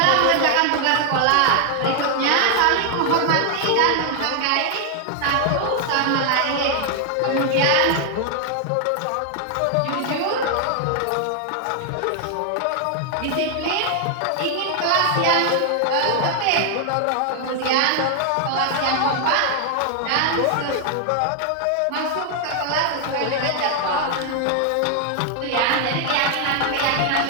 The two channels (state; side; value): different; both; correlation 0.00